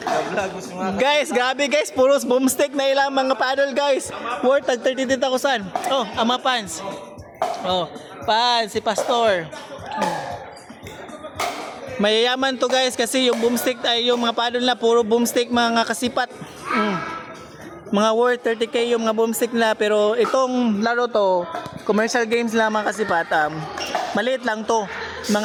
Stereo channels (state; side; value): identical; both; correlation 1.00